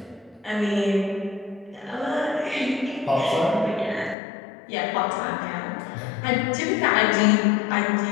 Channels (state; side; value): drops out; right; at 4.2 s